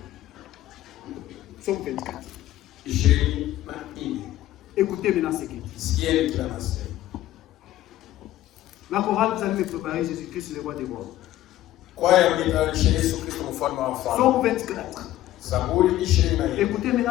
Psaume 24. Écoutez maintenant ce qu'il dit. La chorale, vous allez me préparer Jésus-Christ, le roi des rois. Psaume 24. Écoutez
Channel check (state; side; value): quieter; right; 14.1 dB